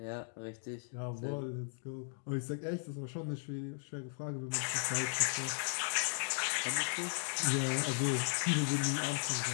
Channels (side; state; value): right; silent; digital silence